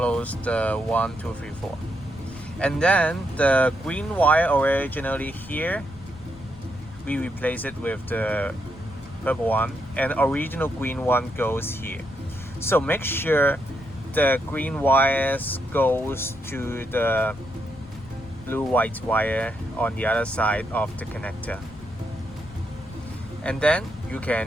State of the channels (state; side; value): noise; left; rumble, 17 dB below the sound